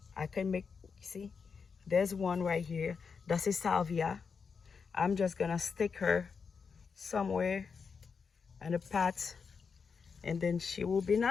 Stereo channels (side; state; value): right; quieter; 5.6 dB